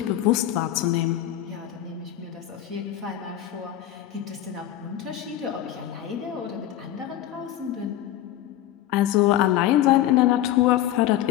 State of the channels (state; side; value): quieter; right; 12.6 dB